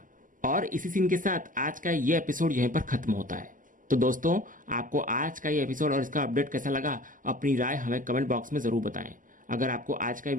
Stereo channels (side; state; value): left; late; 0.38 ms